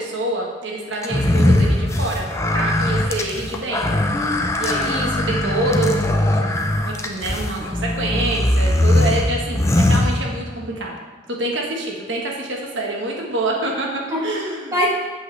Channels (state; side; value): normal; both; correlation 0.63